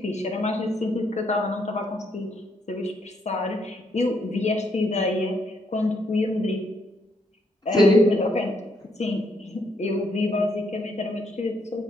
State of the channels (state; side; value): normal; both; correlation 0.74